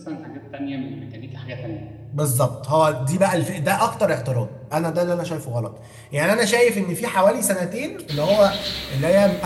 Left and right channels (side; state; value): both; identical; correlation 1.00